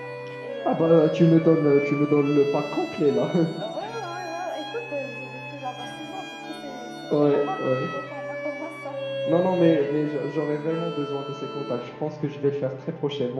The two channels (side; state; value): both; identical; correlation 1.00